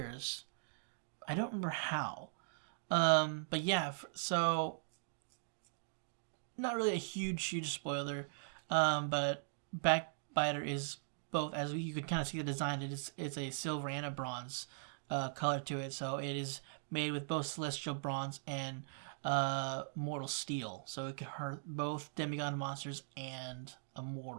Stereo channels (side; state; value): left; silent; digital silence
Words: I don't remember how. But yeah, so not really a huge spoiler. But Backbiter is both, as you could kind of see the design, it's a silver and a bronze color to it. So it is made with both celestial bronze and mortal steel. So it can hurt both demigod monsters and a